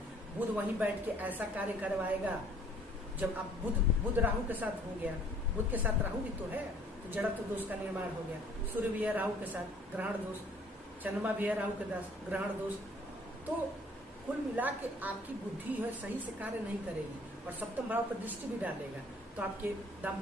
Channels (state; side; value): normal; both; correlation 0.57